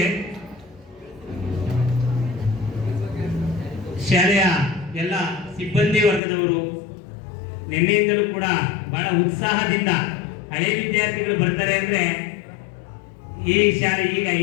ಶಾಲೆಯ ಎಲ್ಲ ಸಿಬ್ಬಂದಿ ವರ್ಗದವರು ನಿನ್ನೆಯಿಂದಲೂ ಕೂಡ ಬಹಳ ಉತ್ಸಾಹದಿಂದ ಹಳೆ ವಿದ್ಯಾರ್ಥಿಗಳು ಬರ್ತಾರೆ ಅಂದ್ರೆ ಈ ಶಾಲೆ ಈಗ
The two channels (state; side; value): drops out; right; at 6.2 s